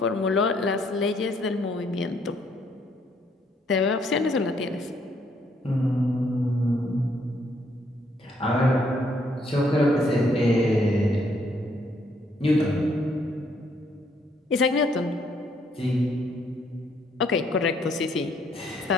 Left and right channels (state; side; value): normal; both; correlation 0.69